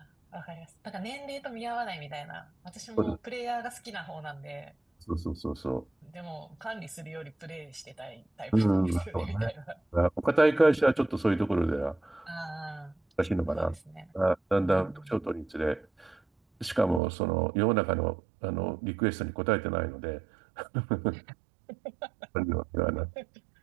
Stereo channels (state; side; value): drops out; left; at 17.0 s